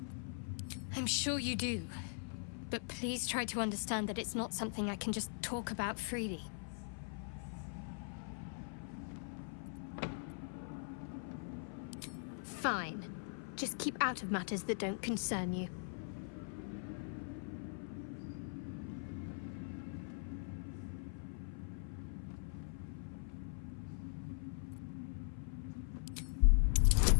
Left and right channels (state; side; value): silent; right; 50 dB below the other